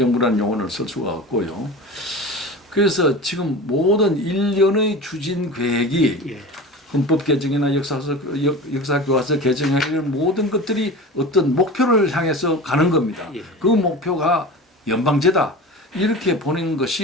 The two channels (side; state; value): both; normal; correlation 0.33